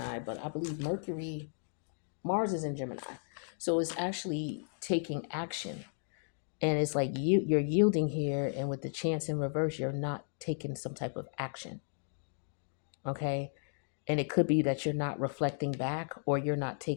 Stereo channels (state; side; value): silent; right; digital silence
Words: but I believe Mercury, Mars is in Gemini. So it's actually taking action. And it's like you're yielding here, and with the chance in reverse, you're not taking some type of action. Okay. And it could be that you're not reflecting back, or you're not